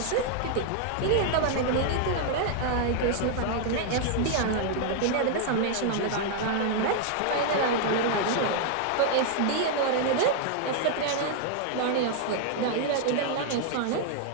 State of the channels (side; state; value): both; different; correlation 0.00